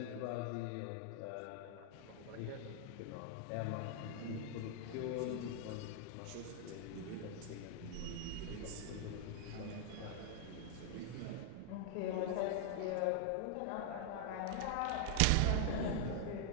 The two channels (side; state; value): both; different; correlation 0.00